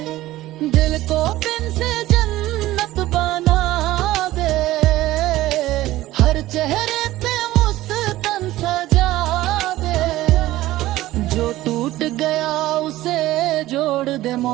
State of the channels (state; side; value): quieter; left; 16.2 dB